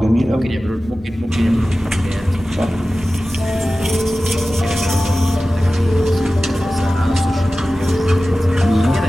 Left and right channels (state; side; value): normal; both; correlation 0.95